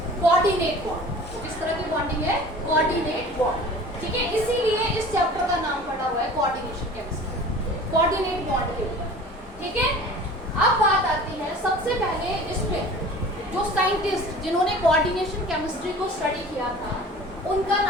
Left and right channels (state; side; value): normal; both; correlation 0.43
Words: Coordinate bond. तो किस तरह की बॉन्डिंग है? Coordinate bond. ठीक है, इसीलिए इस चैप्टर का नाम पड़ा हुआ है कोऑर्डिनेशन केमिस्ट्री, कोऑर्डिनेट बॉन्ड के ऊपर। ठीक है, अब बात आती है सबसे पहले इसमें साइंटिस्ट जिन्होंने कोऑर्डिनेशन केमिस्ट्री को स्टडी किया था उनका